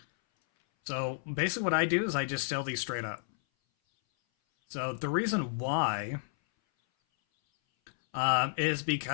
So basically what I do is I just sell these straight up. So the reason why is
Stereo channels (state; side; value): silent; right; 57 dB below the other